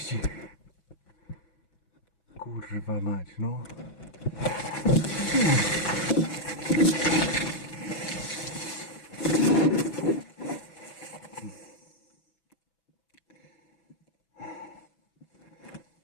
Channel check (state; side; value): late; right; 6.1 ms